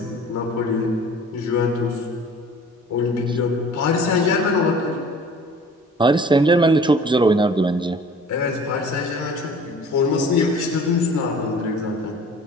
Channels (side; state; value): both; normal; correlation 0.47